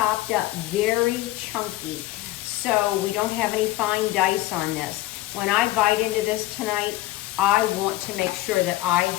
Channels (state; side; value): quieter; right; 16.7 dB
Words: up very chunky, so we don't have any fine dice on this. When I bite into this tonight, I want to make sure that I